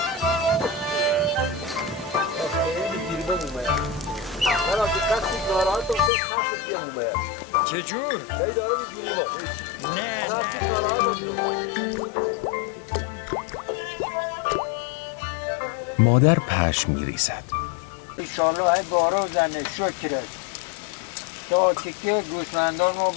چجور؟ نه مادر پشم می ریزد. انشالله های بارو زنه شکرت تا تکه گوسفندان ما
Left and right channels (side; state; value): right; drops out; at 6.1 s